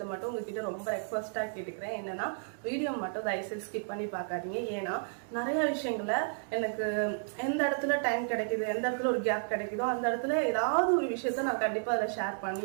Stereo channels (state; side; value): silent; left; digital silence